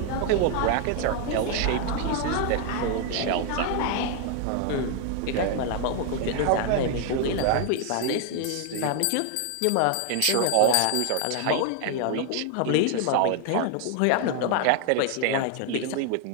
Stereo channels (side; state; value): both; different; correlation 0.00